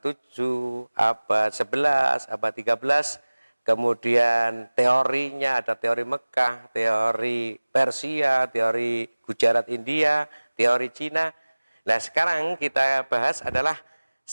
7, abad 11, abad 13. Kemudian teorinya ada teori Mekah, teori Persia, teori Gujarat India, teori Cina. Nah sekarang kita bahas adalah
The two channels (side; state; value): both; inverted; correlation -1.00